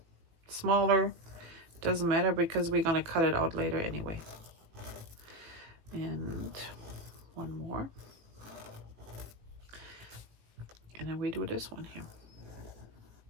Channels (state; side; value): late; left; 18 ms